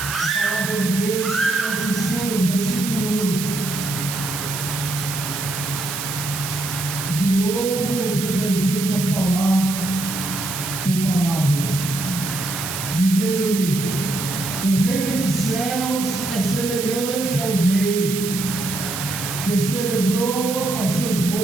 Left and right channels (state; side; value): noise; right; hiss, 5 dB below the sound